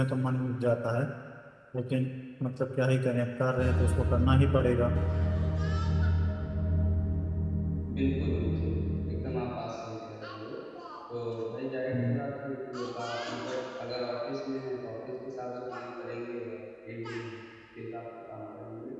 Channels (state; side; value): identical; both; correlation 1.00